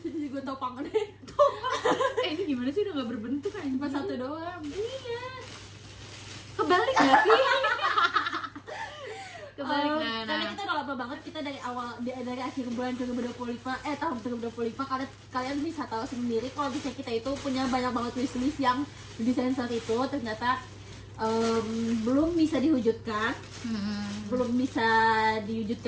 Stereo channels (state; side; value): identical; both; correlation 1.00